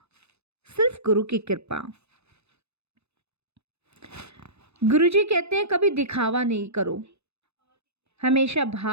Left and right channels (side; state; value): left; late; 0.80 ms